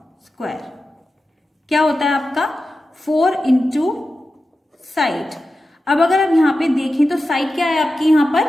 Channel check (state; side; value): normal; both; correlation 0.92